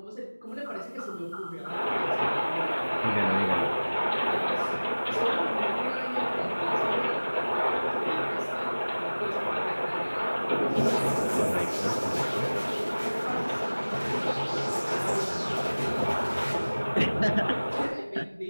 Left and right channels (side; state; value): both; inverted; correlation -1.00